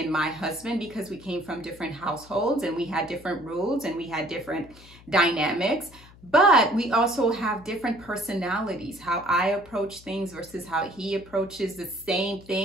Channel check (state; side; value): noise; left; hum, 22 dB below the sound